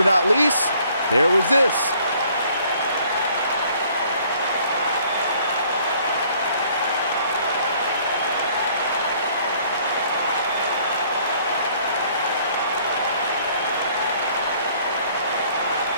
not least, there was this.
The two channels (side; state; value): both; inverted; correlation -0.60